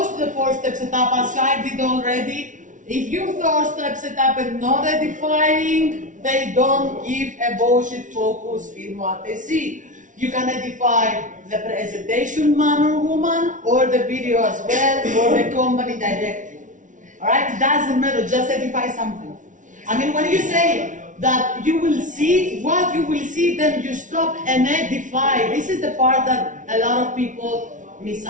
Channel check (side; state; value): left; late; 0.37 ms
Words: to the 4-step setup as I did already. If you 4-step setup and not edifying, they don't give a bullshit focus in what they see. You can edify the presentation man or woman, or the video as well, or the company directly. Alright, it doesn't matter, just edify something. I mean, when you say that you will see what you will see, then you stop and edify. This is the part that a lot of people miss